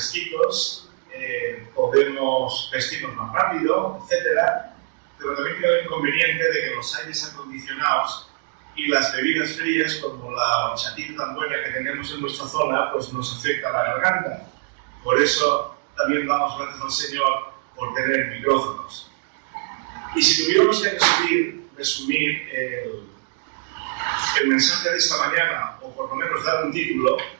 podemos vestirnos más rápido, etc. Pero también tiene el inconveniente de que los aires acondicionados y las bebidas frías, como la horchatita tan buena que tenemos en nuestra zona, pues nos afecta la garganta. Por eso también damos gracias al Señor por tener micrófonos. Y si tuviéramos que resumir el mensaje de esta mañana, o por lo menos dar un título,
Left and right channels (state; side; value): silent; left; digital silence